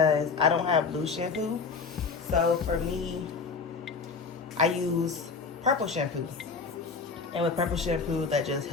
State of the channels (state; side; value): quieter; right; 4.9 dB